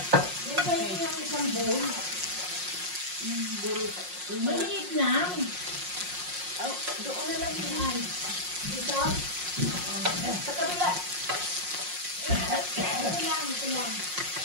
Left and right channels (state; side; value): late; left; 5.6 ms